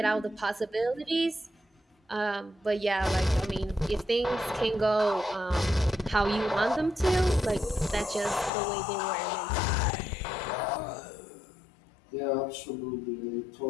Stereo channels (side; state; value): right; drops out; at 8.5 s